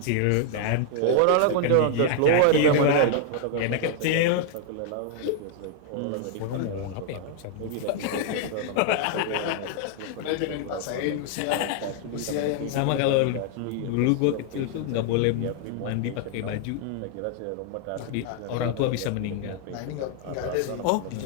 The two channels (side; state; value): both; different; correlation 0.00